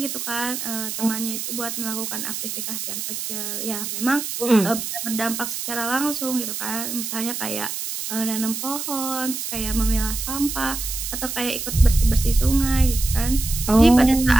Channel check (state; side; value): noise; right; hiss, 5 dB below the sound